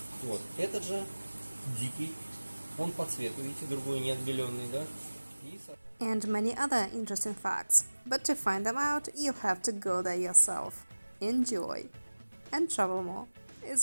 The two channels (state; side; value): inverted; both; correlation -1.00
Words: Вот. Этот же дикий, он по цвету, видите, другой не отбеленный, да? And many other interesting facts. But to find them out, you have to go there yourself. Enjoy. And travel more